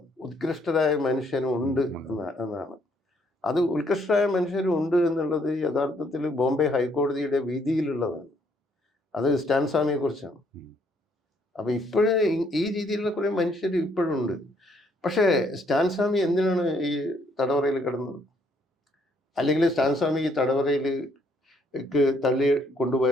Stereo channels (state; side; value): normal; both; correlation 0.68